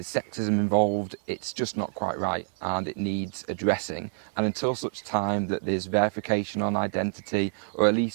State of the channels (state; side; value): silent; left; digital silence